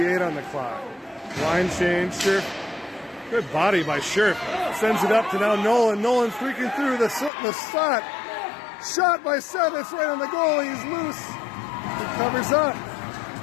on the clock. Line change. Scherf. Good body by Scherf. Sends it up to now Nolan. Nolan freaking through the slot. Shot by Seth. It's right on the goalie. He's loose. He covers up.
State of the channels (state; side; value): drops out; right; at 7.3 s